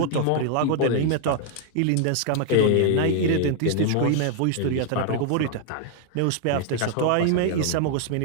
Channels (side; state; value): both; different; correlation 0.00